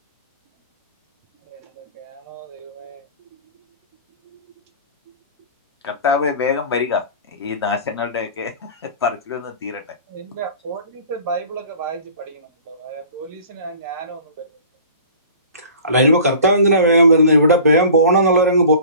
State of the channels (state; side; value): inverted; both; correlation -0.44